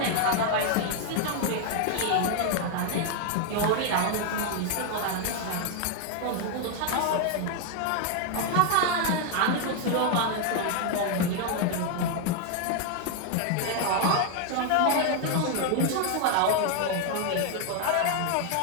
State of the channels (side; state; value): both; different; correlation 0.00